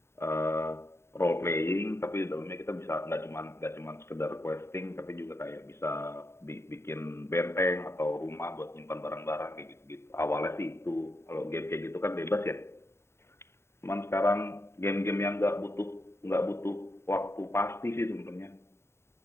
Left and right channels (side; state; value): right; late; 0.13 ms